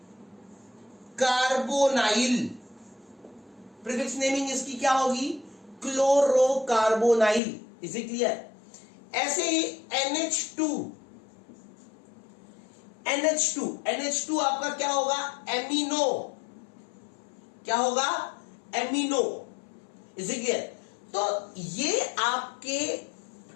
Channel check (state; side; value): drops out; right; at 7.4 s